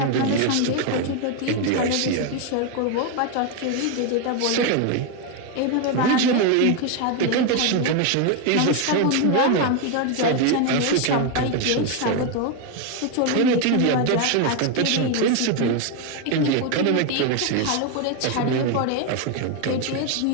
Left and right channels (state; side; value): different; both; correlation 0.01